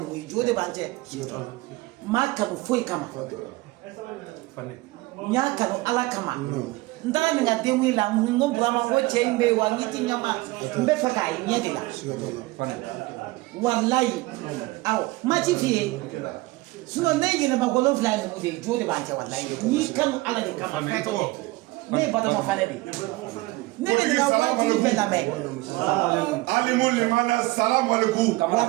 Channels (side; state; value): left; quieter; 21.1 dB